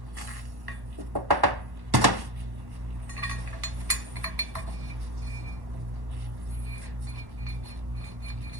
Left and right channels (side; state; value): left; late; 1.1 ms